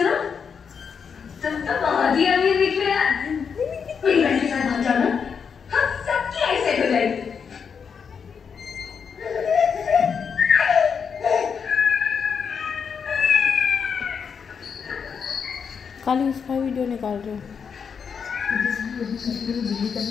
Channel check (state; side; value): quieter; right; 6.5 dB